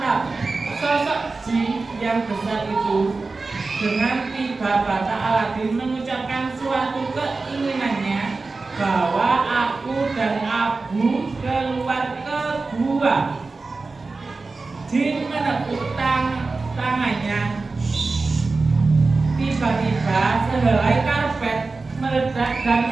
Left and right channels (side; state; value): left; quieter; 3.8 dB